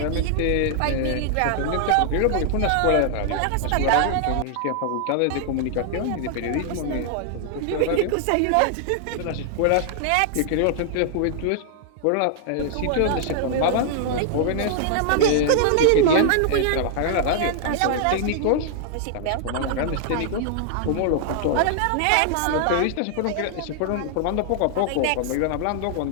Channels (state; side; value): different; both; correlation -0.01